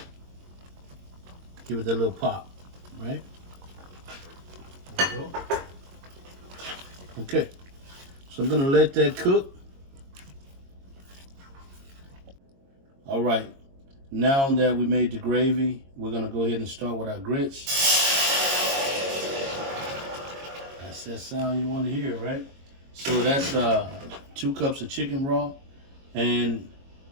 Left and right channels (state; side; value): late; left; 22 ms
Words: Give it that little pop, right? There we go. Okay, so I'm gonna let that cook. All right, now that we made the gravy, we're gonna go ahead and start with our grits. That's that sound you wanna hear, right? So that's 2 cups of chicken raw. And